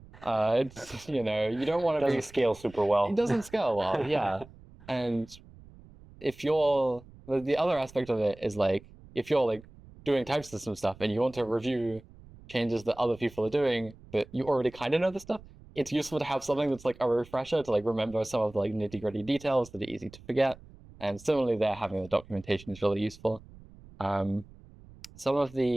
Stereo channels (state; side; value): noise; right; rumble, 21 dB below the sound